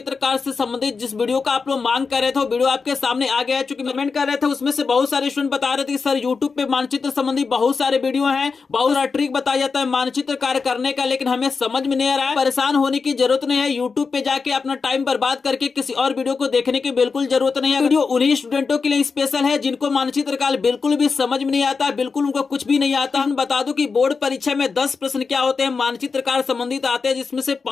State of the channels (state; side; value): quieter; right; 4.9 dB